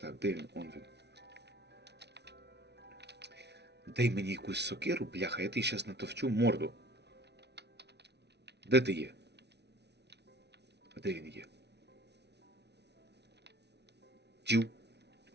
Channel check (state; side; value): late; left; 0.49 ms